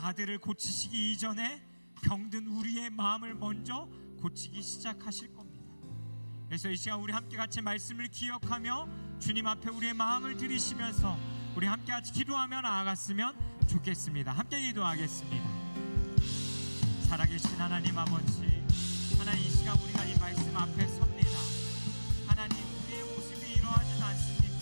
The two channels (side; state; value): both; inverted; correlation -1.00